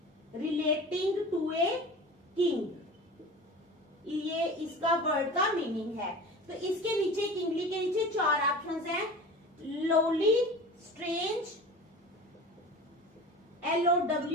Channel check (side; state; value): both; normal; correlation 0.36